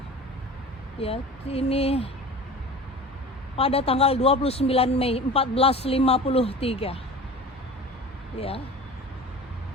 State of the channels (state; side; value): normal; both; correlation 0.37